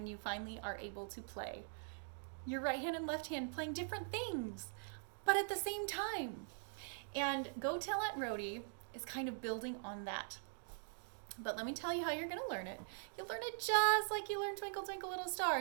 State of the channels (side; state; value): left; silent; digital silence